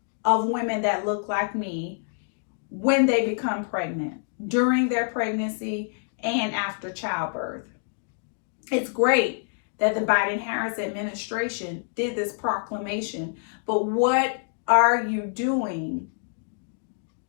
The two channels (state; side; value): silent; right; digital silence